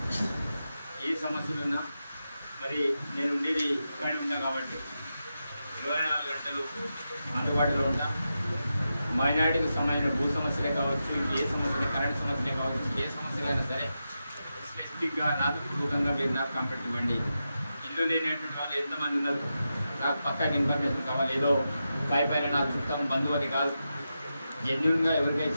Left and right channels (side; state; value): both; inverted; correlation -0.89